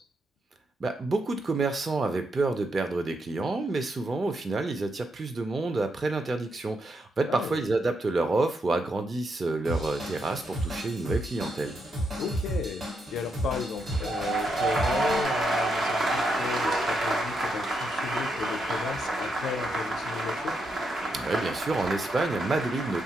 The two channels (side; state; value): both; normal; correlation 0.81